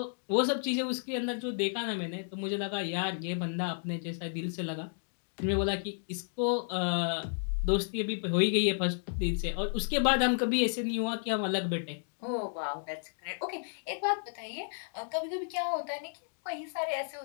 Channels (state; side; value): silent; right; digital silence